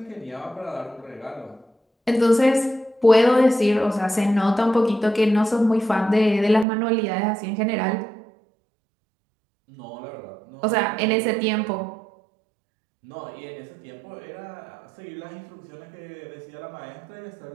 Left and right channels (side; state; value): left; drops out; at 6.7 s